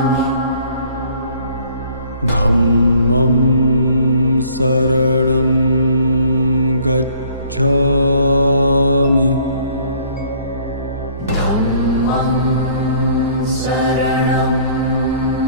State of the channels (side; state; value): both; inverted; correlation -0.57